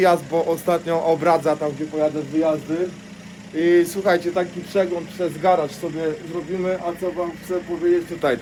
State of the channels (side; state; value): both; identical; correlation 1.00